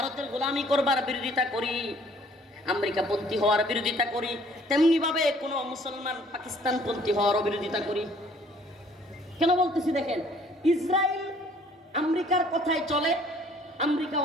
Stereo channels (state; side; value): normal; both; correlation 0.58